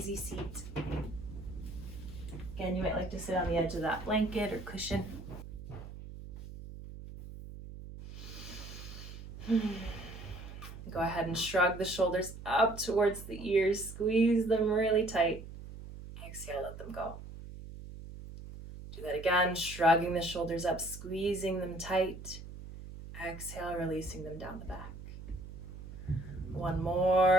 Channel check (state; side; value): noise; right; hum, 12 dB below the sound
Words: seat. Again, you might like to sit on the edge of that blanket or cushion. Go ahead and shrug the shoulders up towards the ears. Squeeze them really tight. Exhale, let them go. Do that again, shrugging the shoulders up, squeezing them tight. Exhale, releasing them down the back. One